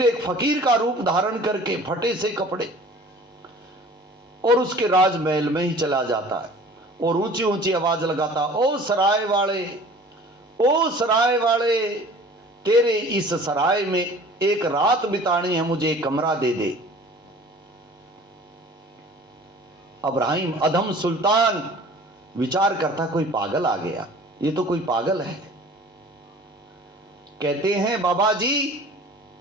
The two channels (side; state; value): both; normal; correlation 0.46